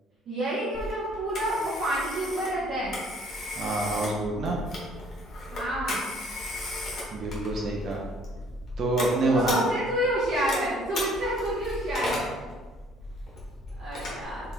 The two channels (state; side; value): normal; both; correlation 0.59